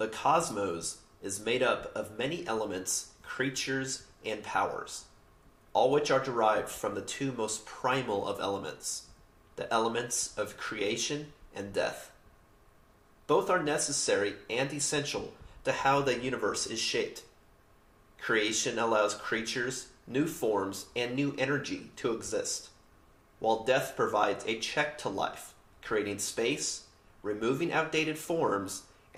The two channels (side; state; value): both; identical; correlation 1.00